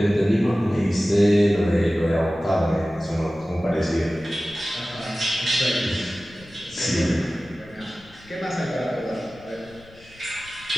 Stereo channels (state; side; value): noise; left; rumble, 24 dB below the sound